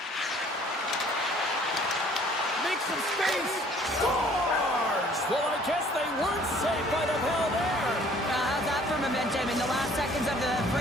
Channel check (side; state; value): both; normal; correlation 0.56